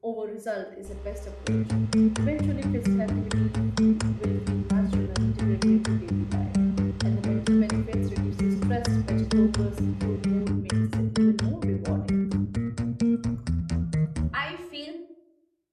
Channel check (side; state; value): both; identical; correlation 1.00